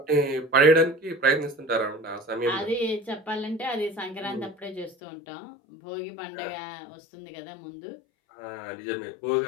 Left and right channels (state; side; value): drops out; right; at 5.0 s